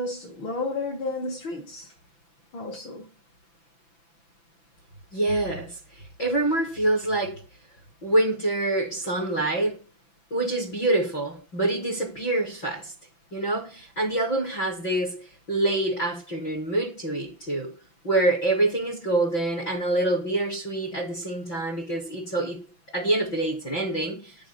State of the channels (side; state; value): right; late; 6.0 ms